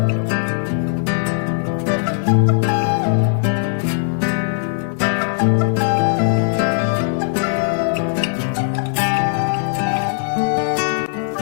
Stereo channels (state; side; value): silent; right; digital silence